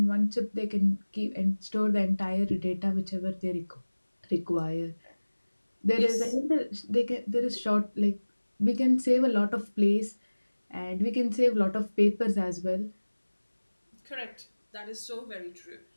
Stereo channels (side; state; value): both; inverted; correlation -1.00